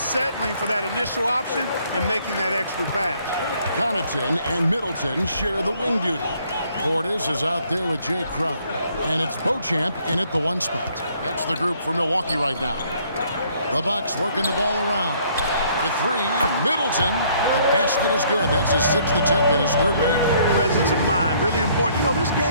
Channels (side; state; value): both; inverted; correlation -0.64